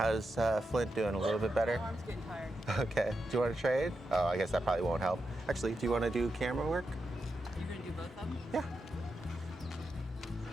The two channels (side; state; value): both; normal; correlation 0.87